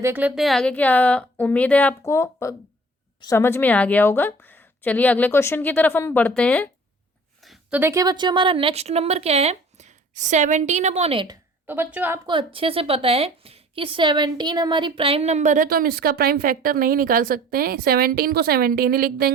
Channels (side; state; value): both; normal; correlation 0.49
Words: लेते हैं आगे, क्या उम्मीद है आपको समझ में आ गया होगा। चलिए अगले क्वेश्चन की तरफ हम बढ़ते हैं। तो देखिए बच्चों हमारा नेक्स्ट नंबर क्या है, 17/8। तो बच्चों आपको अच्छे से पता है कि 17 हमारी प्राइम नंबर है तो हम इसका प्राइम फैक्टर नहीं निकाल सकते हैं, 17 को 17 ही लिख